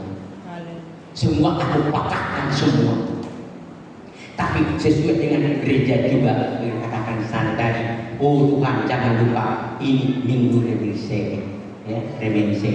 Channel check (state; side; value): identical; both; correlation 1.00